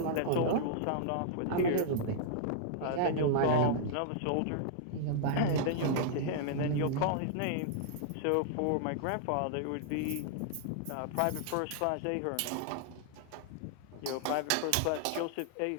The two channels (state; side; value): different; both; correlation -0.01